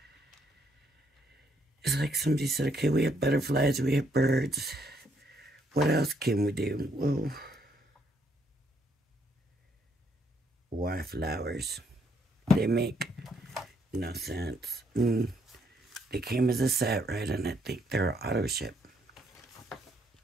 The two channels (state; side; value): normal; both; correlation 0.71